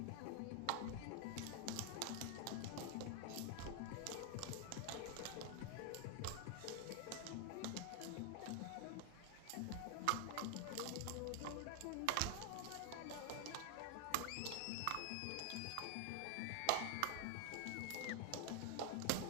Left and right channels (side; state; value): both; different; correlation 0.00